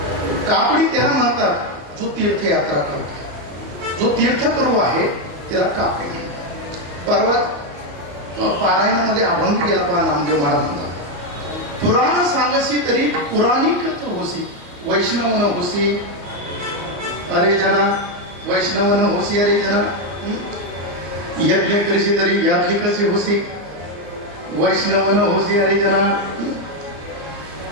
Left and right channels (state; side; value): late; left; 34 ms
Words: कापडी त्याला म्हणतात जो तीर्थयात्रा करतो, जो तीर्थकरू आहे त्याला कापडी म्हणतात. परवा पारायणामध्ये अभंग गेला पहा नामदेव महाराज म्हणतात, पुराण सांगसी तरी पुराणिकच होसी, वैष्णव न होसी अरे जना, वैष्णव न होसी अरे जना. यज्ञ करीसी तरी याज्ञिकच होसी, वैष्णव न होसी अरे जना.